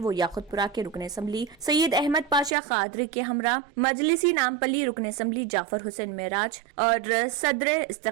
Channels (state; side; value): drops out; left; at 2.6 s